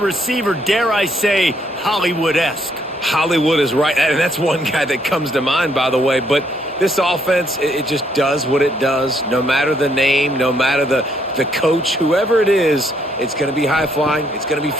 dare I say, Hollywood-esque. Hollywood is right, and that's one guy that comes to mind, by the way. But this offense, it just does what it does. No matter the name, no matter the coach, whoever it is, it's going to be high-flying, it's going to be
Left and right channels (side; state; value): both; normal; correlation 0.71